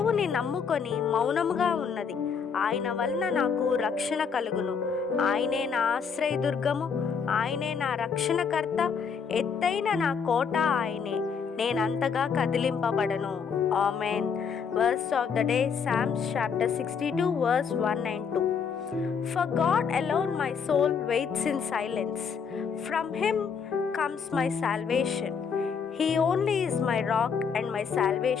నమ్ముకొని మౌనముగా ఉన్నది. ఆయన వలన నాకు రక్షణ కలుగును. ఆయనే నా ఆశ్రయదుర్గము, ఆయనే నా రక్షణకర్త, ఎత్తైన నా కోట ఆయనే, నేనంతగా కదిలింపబడను. Amen. Verse of the day, Psalms chapter 62 verse 1 and 2. For God alone my soul waits in silence. From him comes my salvation. He only is my rock and my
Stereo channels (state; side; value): quieter; right; 6.3 dB